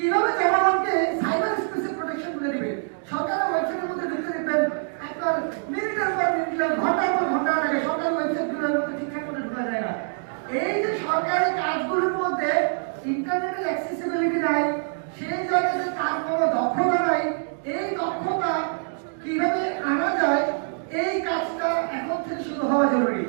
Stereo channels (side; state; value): left; silent; digital silence